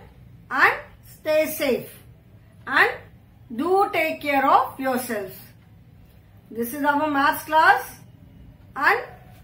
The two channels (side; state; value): both; identical; correlation 1.00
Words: and stay safe and do take care of yourselves. This is our maths class and